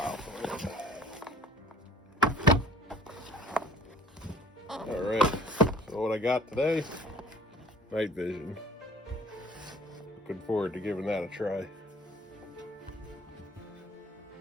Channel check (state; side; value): normal; both; correlation 0.53